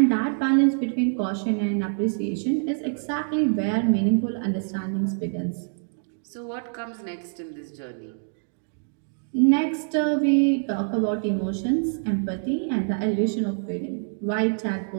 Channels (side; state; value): left; silent; digital silence